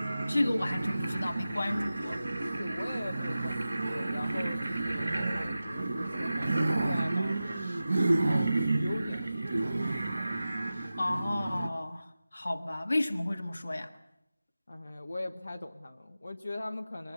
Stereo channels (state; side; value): inverted; both; correlation -0.95